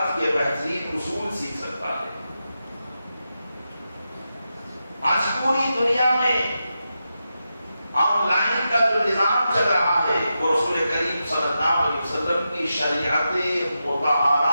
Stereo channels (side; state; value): both; inverted; correlation -0.89